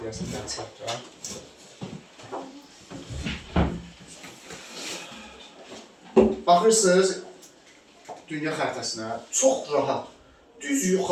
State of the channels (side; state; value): both; identical; correlation 1.00